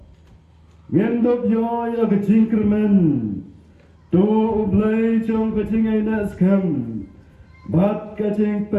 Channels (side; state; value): both; identical; correlation 1.00